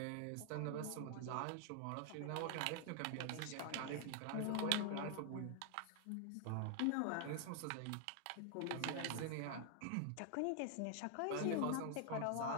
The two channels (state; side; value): different; both; correlation 0.00